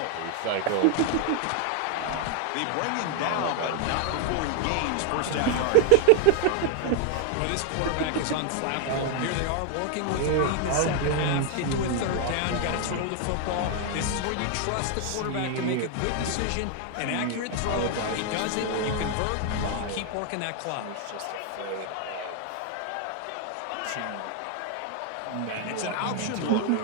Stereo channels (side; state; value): both; different; correlation 0.00